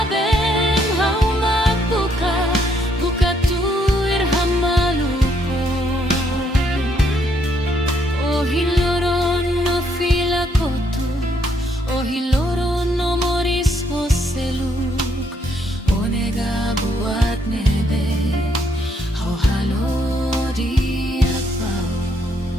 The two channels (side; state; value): both; normal; correlation 0.72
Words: hau magbuka buka tuir hamaluko ohiloron no filakotu ohiloron no moris hoseluk onega buat nebe hau halo diak bau.